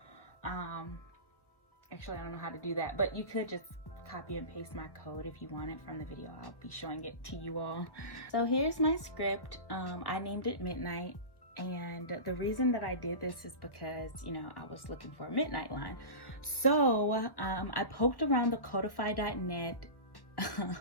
Actually, I don't know how to do that, but you could just copy and paste my code if you want it from the video. I'll be showing it to you all. So here's my script. I named it Midnight. And the reason that I did this is because, you know, I was looking for a midnight line. So I poked around the codify.net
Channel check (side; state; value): right; late; 1.4 ms